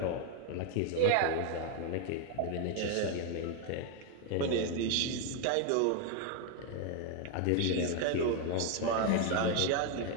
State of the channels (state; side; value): different; both; correlation 0.01